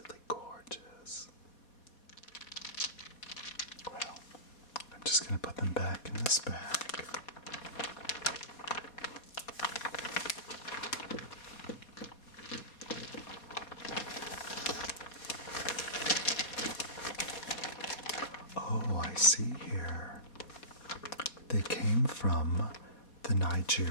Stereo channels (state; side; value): late; right; 4.2 ms